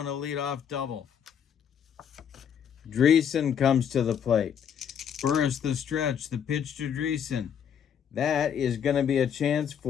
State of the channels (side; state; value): right; quieter; 8.2 dB